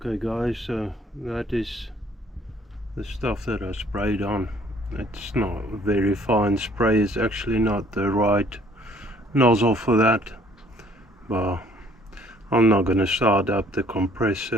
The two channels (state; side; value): normal; both; correlation 0.59